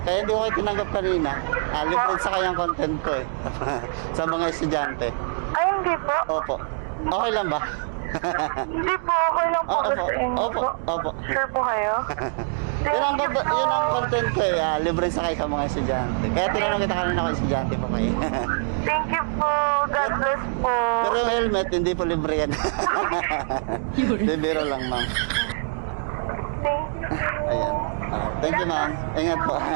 Kaya hindi ko kayo tinanggap kanina. Libre sa kayang content ko eh. Sa mga estudyante. Ay, hindi po. Opo. Okay lang ba? Hindi po, okay lang po. Opo, Sa inyo opo, po. opo. Sure po kayo? Yun ang content ko eh. Libre sa kayo sa mga estudyante. Kaya tinanong kita kanina kung estudyante po kayo. Thank you po. God bless po. Pero yung helmet, hindi po libre yan. Libero lang ma'am. Thank you. Ayan. Thank you ma'am. Ingat po.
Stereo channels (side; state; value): left; silent; digital silence